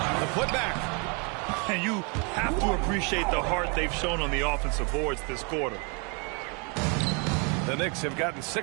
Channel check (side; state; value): left; quieter; 33.8 dB